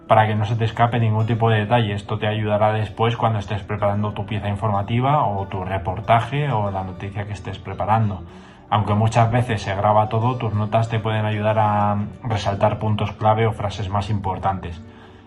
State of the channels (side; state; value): both; identical; correlation 1.00